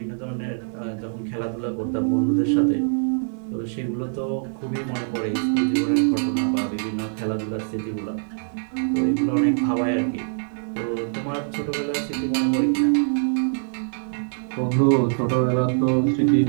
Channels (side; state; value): left; silent; digital silence